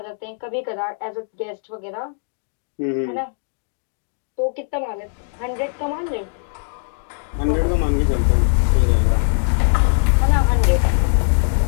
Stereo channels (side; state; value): right; silent; digital silence